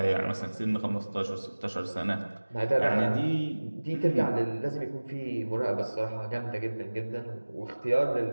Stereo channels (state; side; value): inverted; both; correlation -1.00